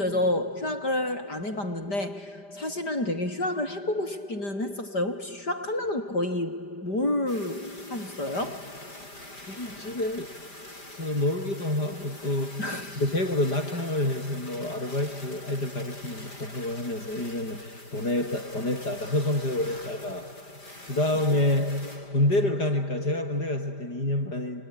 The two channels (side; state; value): right; late; 5.0 ms